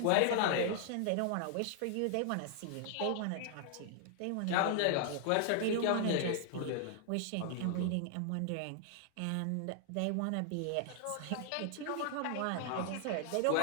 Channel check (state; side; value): different; both; correlation 0.00